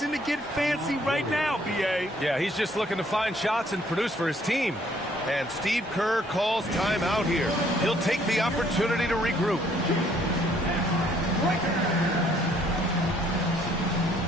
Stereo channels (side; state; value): both; normal; correlation 0.64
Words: to get fancy right now, B.A. Yeah, he's just looking to find shots and produce for his team. And Steve Kerr calls timeout here. He'll take the opportunity to regroup.